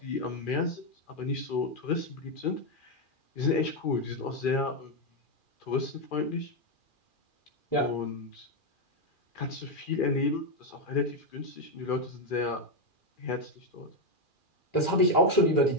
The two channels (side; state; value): right; late; 2.4 ms